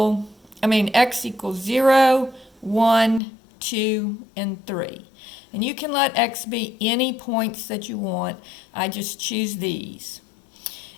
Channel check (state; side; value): drops out; right; at 3.2 s